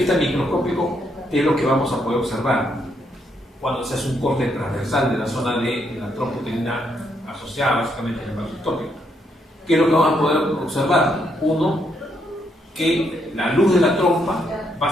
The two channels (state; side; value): normal; both; correlation 0.75